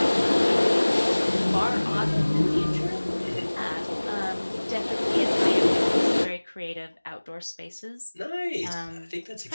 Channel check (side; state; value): both; inverted; correlation -1.00